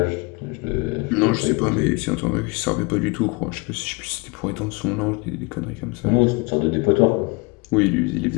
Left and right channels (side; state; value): right; quieter; 27.5 dB